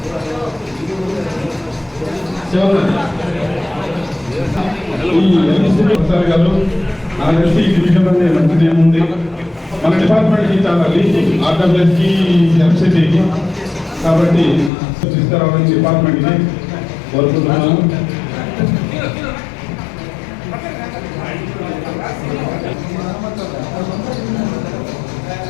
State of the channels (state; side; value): drops out; right; at 14.7 s